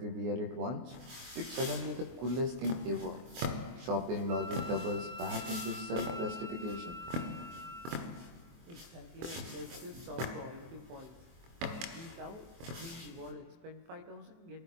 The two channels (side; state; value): left; late; 24 ms